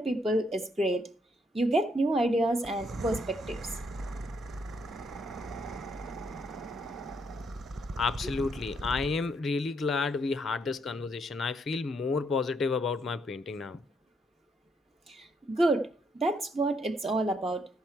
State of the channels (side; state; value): both; normal; correlation 0.74